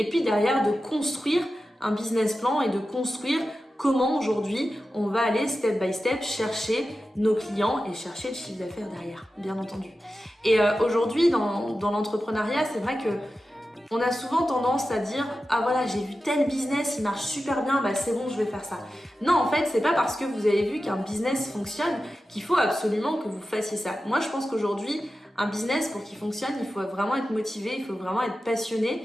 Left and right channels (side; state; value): both; normal; correlation 0.93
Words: puis derrière de construire un business plan et de construire comment aujourd'hui on va aller step by step chercher nos clients et chercher le chiffre d'affaires derrière, bien entendu. Et aujourd'hui dans l'entrepreneuriat, c'est vrai que on a souvent tendance à dire ah voilà, j'ai vu tel business, il marche super bien, c'est bon, je vais faire ça. Non, en fait, c'est pas parce que vous avez vu qu'un business fonctionne qu'il faut absolument que vous fassiez ça. Moi, je pense qu'aujourd'hui, un business, pour qu'il fonctionne, il faut vraiment être motivé, il faut vraiment être